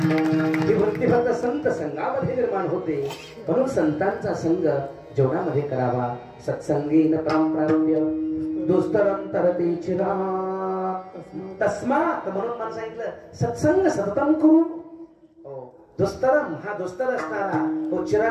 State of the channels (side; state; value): both; identical; correlation 1.00